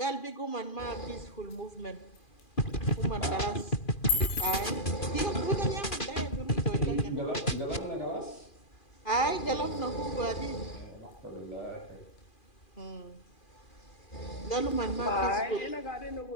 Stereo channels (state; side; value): late; right; 2.4 ms